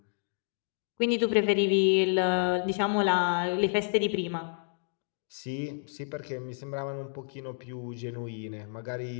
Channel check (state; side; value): silent; right; digital silence